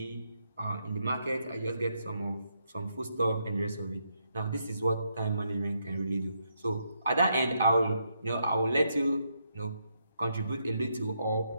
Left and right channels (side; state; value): both; inverted; correlation -0.78